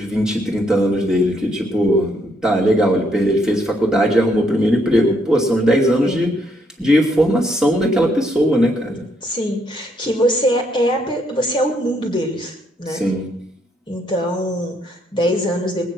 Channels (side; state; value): both; normal; correlation 0.72